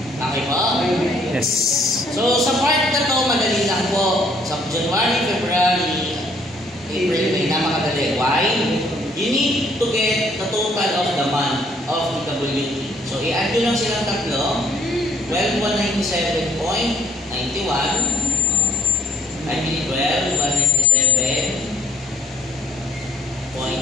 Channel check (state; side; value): normal; both; correlation 0.66